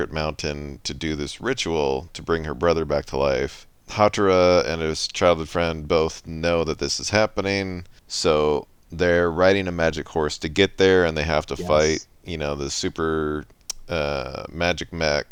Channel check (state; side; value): identical; both; correlation 1.00